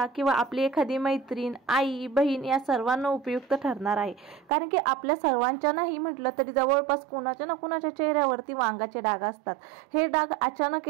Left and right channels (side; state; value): left; drops out; at 4.5 s